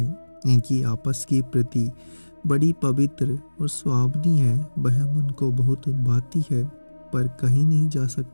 इनकी आपस की प्रीति बड़ी पवित्र और सुहावनी है। वह मन को बहुत भाती है पर कहीं नहीं जा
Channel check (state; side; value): inverted; both; correlation -1.00